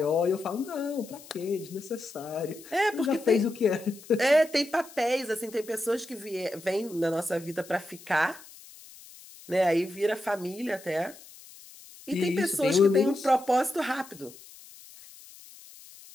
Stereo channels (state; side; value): noise; left; hiss, 20 dB below the sound